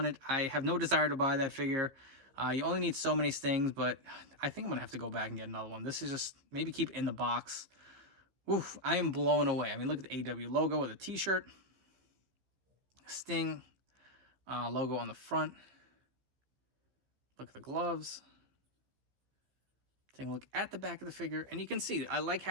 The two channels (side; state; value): left; late; 15 ms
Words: I have no desire to buy that figure. You only need so many Stings, but I think I'm going to have to go back and get another one. This is just, maybe keep it in the box. Oof, I am blown away. I mean, look at the AEW logo with a t-shirt. Sting logo on the front. Look at the gloves. Taking a look at the back of the figure. And you can see, I like